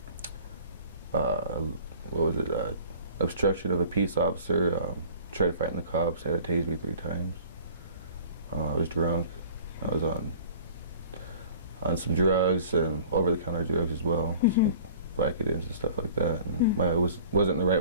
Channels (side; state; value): both; inverted; correlation -0.47